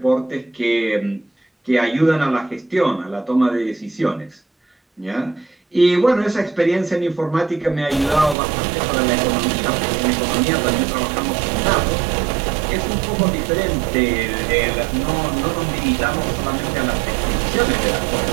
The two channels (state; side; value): drops out; left; at 8.3 s